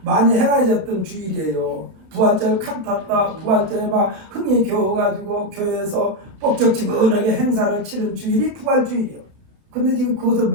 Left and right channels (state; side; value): late; left; 31 ms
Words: 많이 행해졌던 주일이에요. 부활절 칸탔다, 부활절에 막 흥이 겨워가지고 교회에서 뻑적지근하게 행사를 치른 주일이 부활주일이요. 근데 지금 그것을